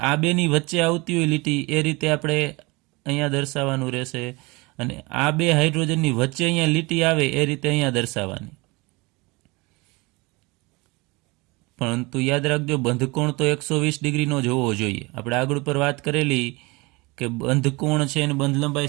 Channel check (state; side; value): quieter; left; 25.1 dB